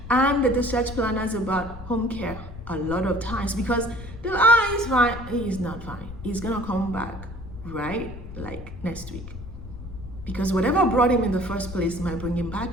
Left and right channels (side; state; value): left; noise; rumble, 12 dB below the sound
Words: and the discharge planners about home care a lot of times, because they're he's fine. He's not fine. He's gonna come back, right? Like next week. Because whatever brought him in the first place might bring him